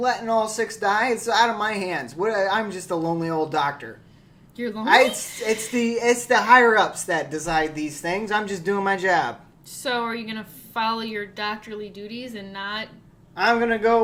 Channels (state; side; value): identical; both; correlation 1.00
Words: all 6 die. It's out of my hands. I'm just a lonely old doctor. You're lonely? It's the higher ups that decide these things. I'm just doing my job. So are you going to follow your doctorly duties and not... I'm gonna